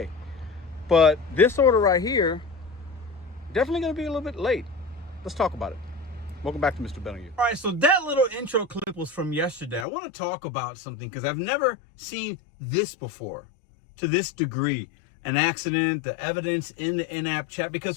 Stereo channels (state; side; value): drops out; right; at 9.9 s